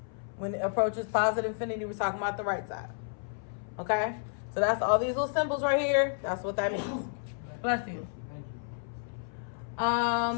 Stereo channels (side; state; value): right; silent; 57 dB below the other